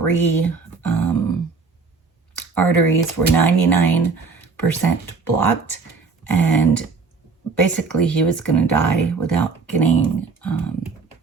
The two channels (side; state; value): left; quieter; 4.6 dB